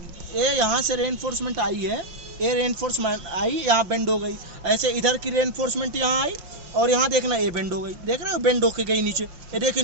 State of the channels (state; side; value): late; left; 5.6 ms